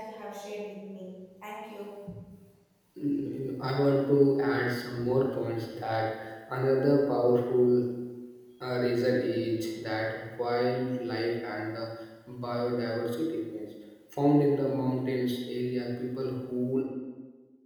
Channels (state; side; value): identical; both; correlation 1.00